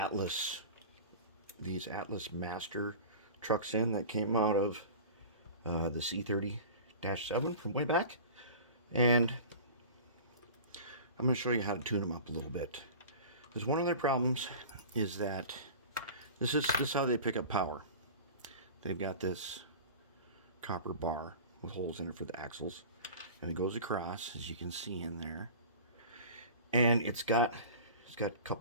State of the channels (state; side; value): inverted; both; correlation -0.36